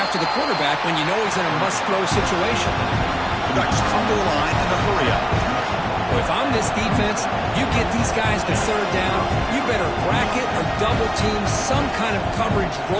the quarterback when you know he's in a must-throw situation. The Ducks come to the line in a hurry up. Well, if I'm this defense, you get these guys to 3rd down, you better bracket or double team some kind of coverage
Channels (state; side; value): identical; both; correlation 1.00